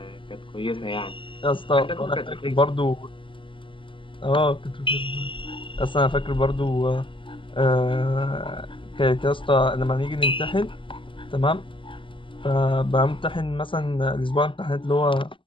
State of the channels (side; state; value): right; late; 0.25 ms